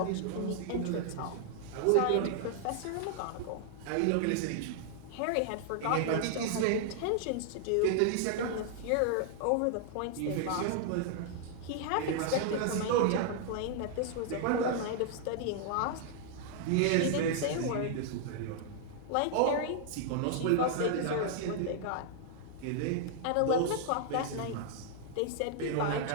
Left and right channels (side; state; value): both; different; correlation -0.01